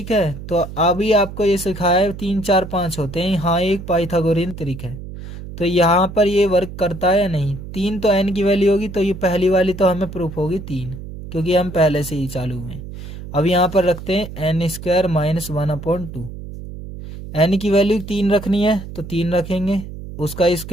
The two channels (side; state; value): right; noise; hum, 11 dB below the sound